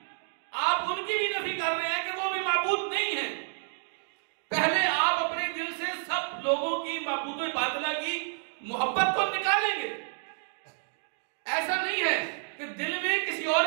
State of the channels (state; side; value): silent; left; 58 dB below the other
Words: آپ ان کی بھی نفی کر رہے ہیں کہ وہ بھی معبود نہیں ہیں. پہلے آپ اپنے دل سے سب لوگوں کی معبود باطلہ کی محبت کو نکالیں گے. ایسا نہیں ہے کہ دل میں کسی اور